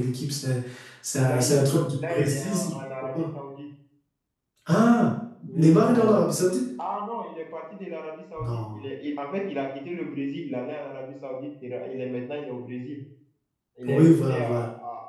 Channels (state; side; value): identical; both; correlation 1.00